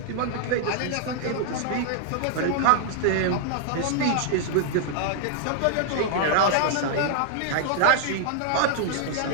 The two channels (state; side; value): different; both; correlation -0.01